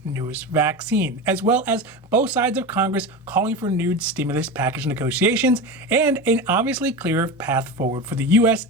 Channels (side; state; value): both; normal; correlation 0.25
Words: newest vaccine, as well as both sides of Congress calling for renewed stimulus package negotiations and an obviously clearer path forward for the U.S.